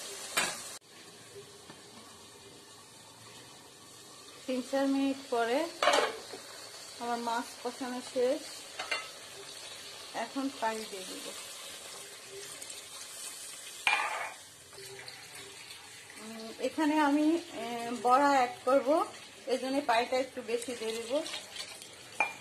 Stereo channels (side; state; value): both; identical; correlation 1.00